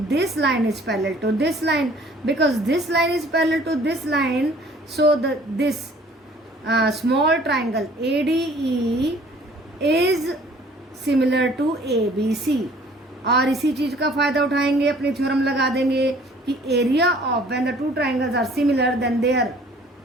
line is parallel to this line, because this line is parallel to this line, so this small triangle ADE is similar to ABC। और इसी चीज का फायदा उठाएंगे, अपनी थ्योरम लगा देंगे कि area of when the two triangles are similar then their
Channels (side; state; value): both; normal; correlation 0.54